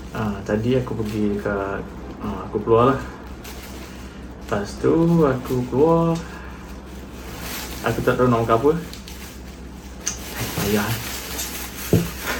Tadi aku pergi dekat aku keluar lah. Lepas tu aku keluar, aku tak tahu nak makan apa. Payah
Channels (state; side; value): identical; both; correlation 1.00